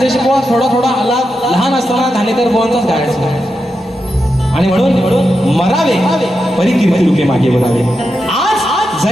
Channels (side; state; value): both; normal; correlation 0.87